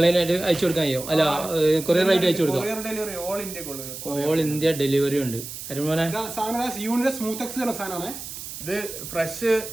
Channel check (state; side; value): noise; right; hiss, 10 dB below the sound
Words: അയച്ചു കൊടുക്കാൻ കഴിയോ? അല്ല കൊറിയർ ആയിട്ട് അയച്ചു കൊടുക്കാം. ഓൾ ഇന്ത്യ ഡെലിവറി ഉണ്ട്. അരുമോനെ ഇത് ഫ്രഷ്